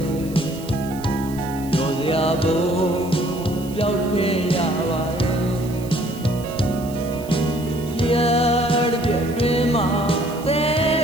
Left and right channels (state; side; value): noise; right; hiss, 19 dB below the sound